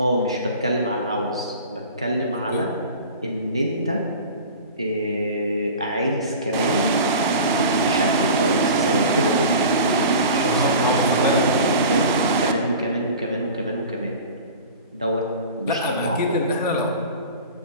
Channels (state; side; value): inverted; both; correlation -0.37